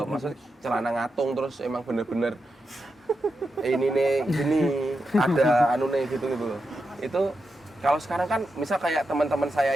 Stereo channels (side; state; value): both; normal; correlation 0.88